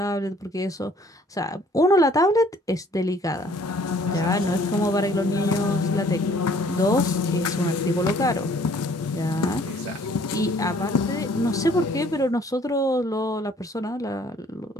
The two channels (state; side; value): normal; both; correlation 0.58